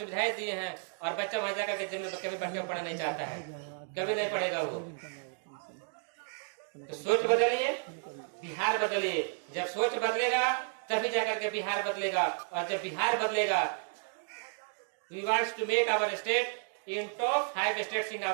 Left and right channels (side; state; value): left; silent; 56 dB below the other